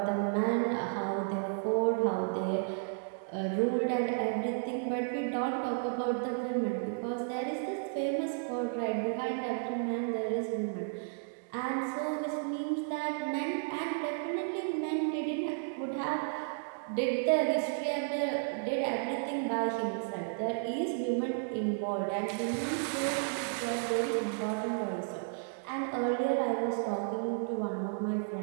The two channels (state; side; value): silent; left; digital silence